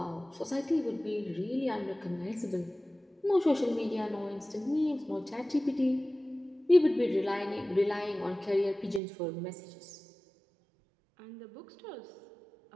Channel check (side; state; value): left; drops out; at 9.0 s